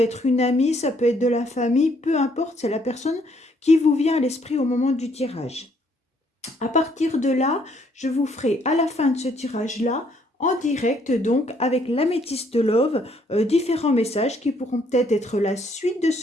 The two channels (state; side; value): normal; both; correlation 0.67